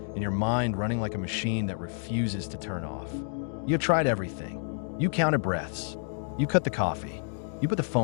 and your mind running like a machine that refuses to turn off. You have tried everything. You counted breaths. You cut the coffee. You put the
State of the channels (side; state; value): right; silent; 58 dB below the other